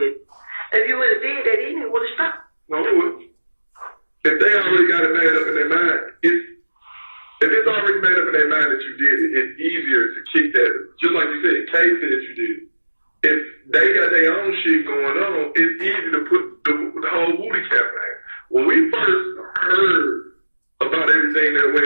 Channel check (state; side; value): inverted; both; correlation -1.00